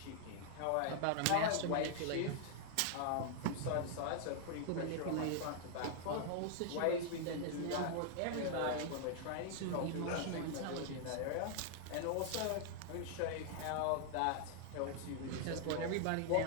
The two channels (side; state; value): both; different; correlation 0.00